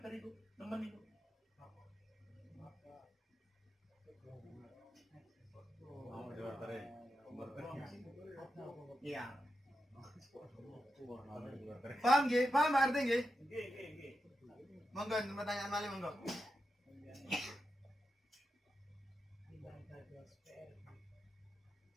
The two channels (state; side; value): normal; both; correlation 0.88